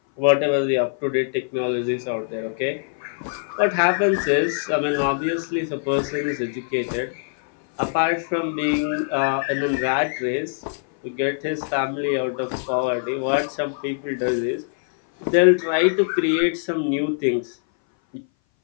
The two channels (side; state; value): right; silent; 59 dB below the other